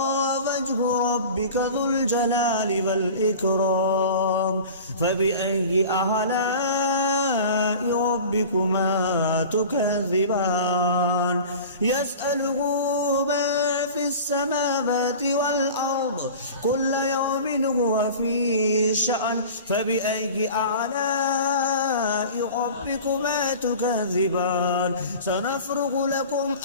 وجه ربك ذو الجلال والإكرام فبأي آلاء ربكما تكذبان يسأله ما في السماوات والأرض كل يوم هو في شأن فبأي آلاء ربكما تكذبان سنفرغ لكم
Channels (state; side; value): inverted; both; correlation -0.38